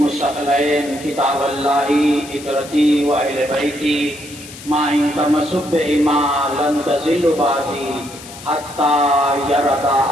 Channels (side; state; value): left; noise; hiss, 16 dB below the sound